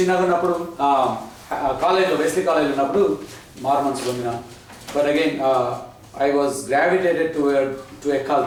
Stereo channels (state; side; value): identical; both; correlation 1.00